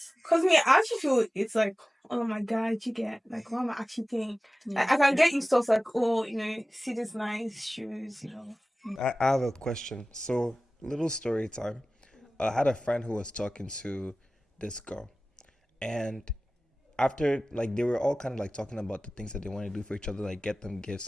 Cause me, I actually feel it's like, oh my god, you get like, why am I actually paying? Like, I can get you stuff like, oh, see this nice shoes, I have a question. So, little story time. I had a friend who was talking to this girl, and after like they were all kind of like talking about the things that they want to do for each other, like get them gifts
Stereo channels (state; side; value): normal; both; correlation 0.97